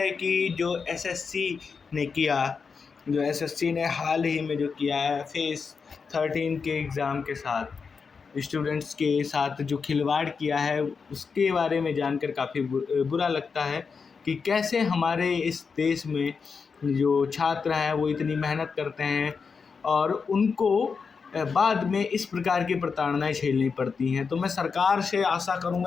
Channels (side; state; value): right; quieter; 5.4 dB